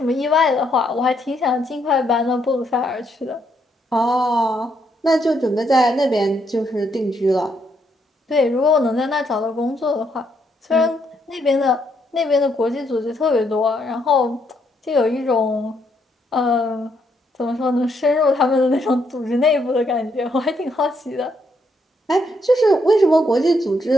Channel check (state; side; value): normal; both; correlation 0.75